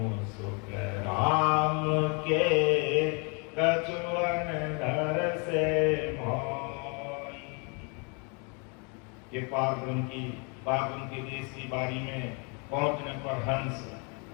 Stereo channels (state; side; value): quieter; right; 33.9 dB